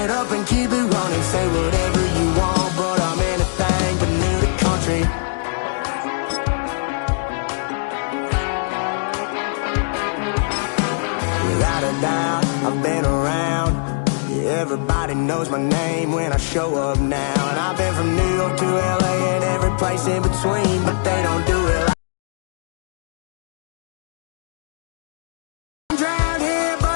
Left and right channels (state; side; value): silent; right; digital silence